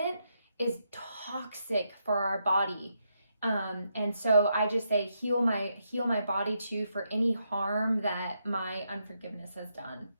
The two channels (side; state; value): both; inverted; correlation -0.80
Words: is toxic for our body. And so I just say, heal my body too, for any harm that my unforgiveness has done.